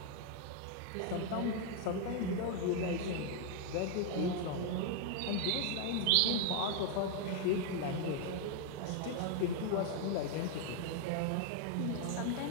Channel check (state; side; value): different; both; correlation 0.00